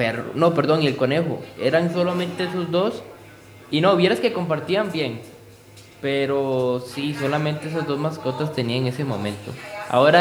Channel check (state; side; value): identical; both; correlation 1.00